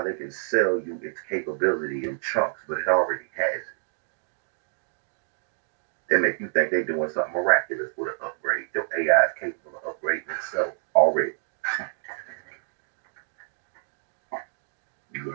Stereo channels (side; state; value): left; silent; 60 dB below the other